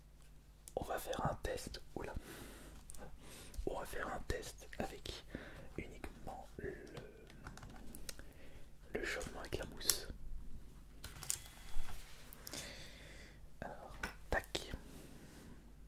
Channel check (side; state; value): both; identical; correlation 1.00